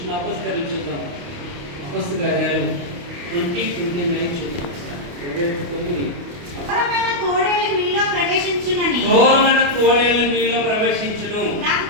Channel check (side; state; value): left; late; 28 ms